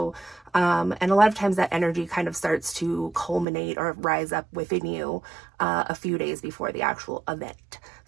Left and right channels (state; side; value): drops out; left; at 3.5 s